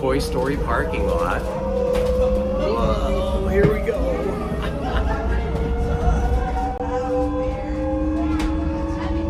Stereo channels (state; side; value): identical; both; correlation 1.00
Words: Story parking lot. Whoa, here we go.